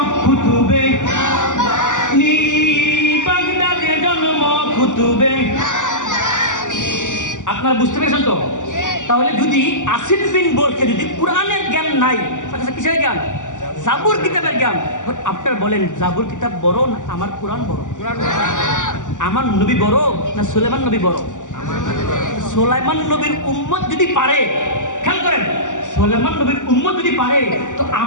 কুতুবে রাব্বানি বাগদাদে জন্ম কুতুবে। আপনারা বুঝতে পেরেছেন তো? তাহলে যদি আসিফ বিন বরকে যদি কোরআনের জ্ঞান নাই, কিসের জ্ঞান? জাবুর কিতাবের জ্ঞান। আপনারা বলেন জাবুর কিতাব বড় না আমার কোরআন বড়? আমার নবী বড় না সুলাইমান নবী বড়? সুলাইমান নবীর উম্মত যদি পারে, খেয়াল করেন, সুলাইমান নবীর উম্মত যদি পারে, তো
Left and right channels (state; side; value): late; right; 0.86 ms